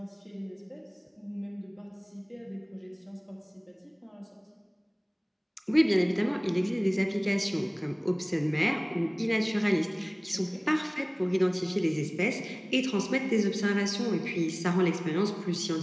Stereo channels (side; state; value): both; identical; correlation 1.00